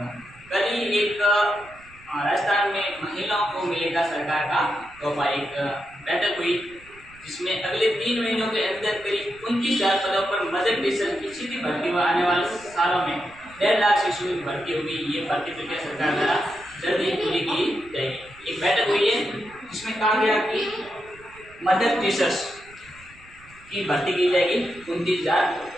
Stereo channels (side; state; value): right; noise; rumble, 25 dB below the sound